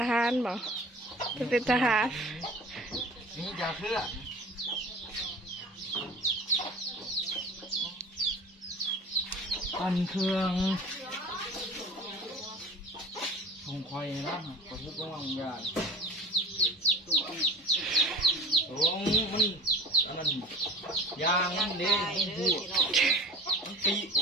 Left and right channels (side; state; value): both; normal; correlation 0.38